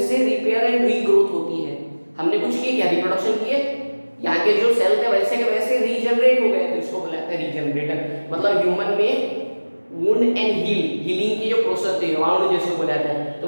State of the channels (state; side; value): inverted; both; correlation -1.00